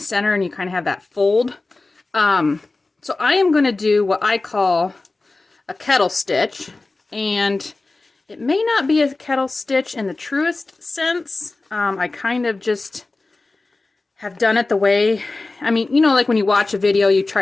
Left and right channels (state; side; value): quieter; right; 3.3 dB